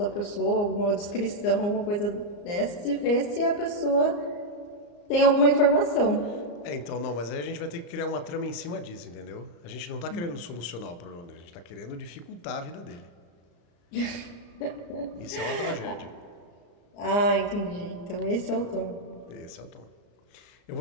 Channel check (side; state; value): right; late; 34 ms